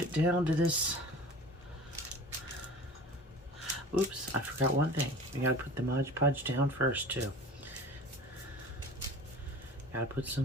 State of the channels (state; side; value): normal; both; correlation 0.40